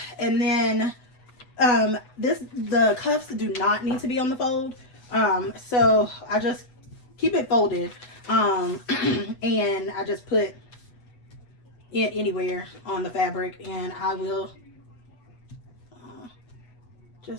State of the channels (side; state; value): right; late; 8.1 ms